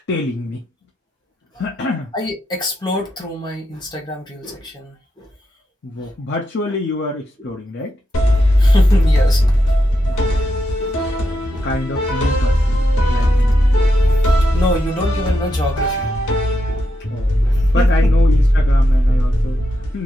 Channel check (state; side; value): normal; both; correlation 0.84